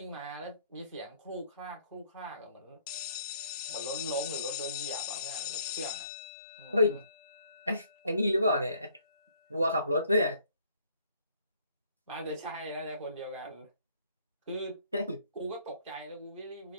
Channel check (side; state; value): both; inverted; correlation -0.62